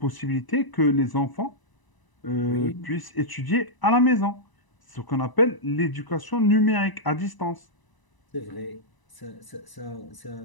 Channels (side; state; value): right; late; 1.0 ms